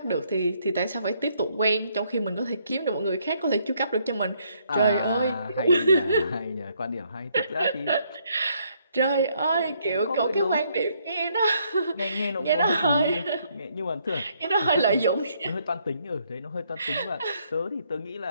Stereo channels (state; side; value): inverted; both; correlation -0.70